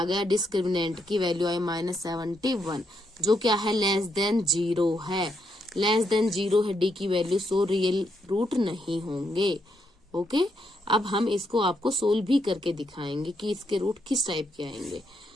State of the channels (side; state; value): both; normal; correlation 0.78